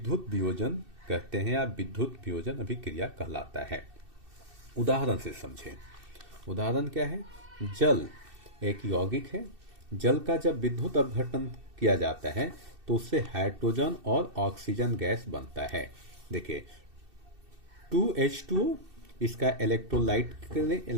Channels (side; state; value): left; late; 2.6 ms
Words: वियोजन कहते हैं या विद्युत वियोजन अभिक्रिया कहलाता है। उदाहरण से समझें। उदाहरण क्या है? जल एक यौगिक है। जल का जब विद्युत अपघटन किया जाता है तो उससे हाइड्रोजन और ऑक्सीजन गैस बनता है। देखिए, 2H2O, इसका